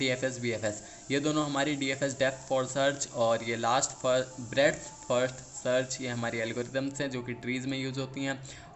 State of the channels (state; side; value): identical; both; correlation 1.00